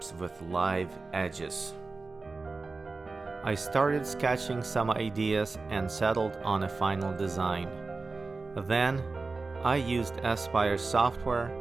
with live edges. I started sketching some ideas and settled on a final design. Then, I used Aspire software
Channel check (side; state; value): left; quieter; 3.8 dB